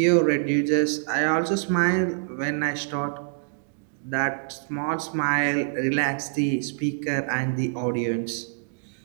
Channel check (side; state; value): left; silent; digital silence